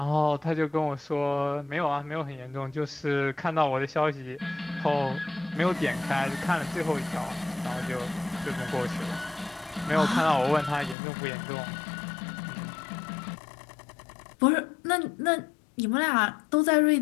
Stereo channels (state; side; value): drops out; right; at 11.0 s